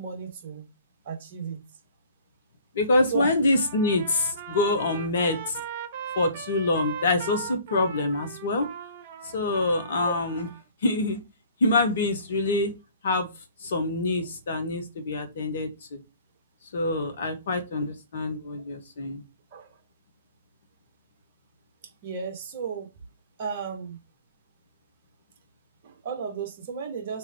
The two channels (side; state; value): both; inverted; correlation -0.52